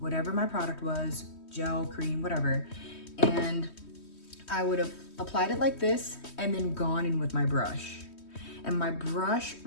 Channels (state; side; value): late; right; 3.2 ms